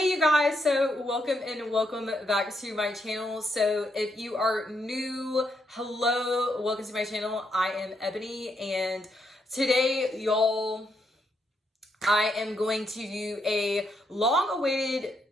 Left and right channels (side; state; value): both; normal; correlation 0.78